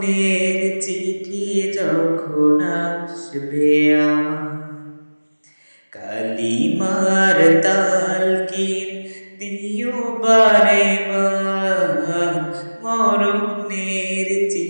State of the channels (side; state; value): both; inverted; correlation -1.00